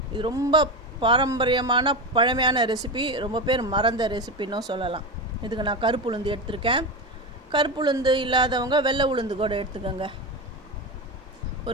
இது ரொம்ப பாரம்பரியமான பழமையான ரெசிபி. ரொம்ப பேர் மறந்த ரெசிபின்னும் சொல்லலாம். இதுக்கு நான் கருப்பு உளுந்து எடுத்திருக்கேன். கருப்பு உளுந்து இல்லாதவங்க வெள்ளை உளுந்து கூட எடுத்துக்கோங்க.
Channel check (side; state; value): both; normal; correlation 0.18